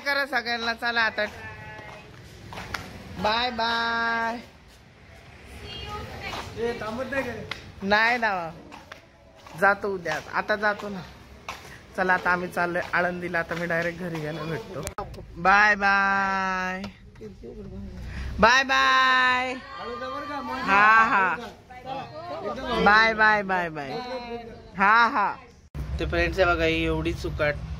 सगळ्यांना. चला आता बाय बाय. नाही ना जातो उद्या. आता जातो ना. चला आता आम्ही चाललोय आळंदीला. आता मी डायरेक्ट घरी गेलो भेटतो. Bye bye. Bye bye. हा बाय बाय बाय बाय. हा ते फ्रेंड्स आहे बघा. ही एवढी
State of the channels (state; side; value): identical; both; correlation 1.00